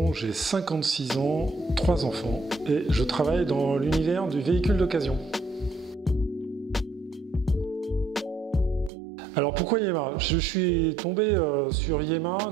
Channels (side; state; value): left; drops out; at 8.9 s